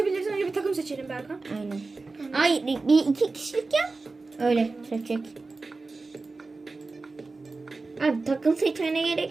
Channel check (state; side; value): quieter; left; 3.7 dB